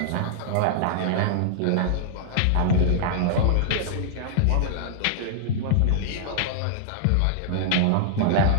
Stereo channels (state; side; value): different; both; correlation -0.01